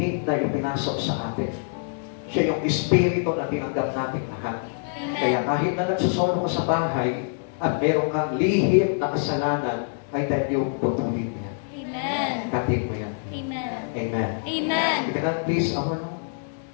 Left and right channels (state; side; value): silent; right; 62 dB below the other